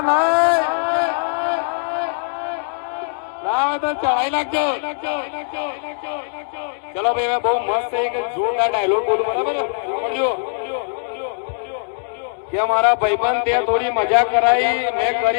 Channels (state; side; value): silent; right; digital silence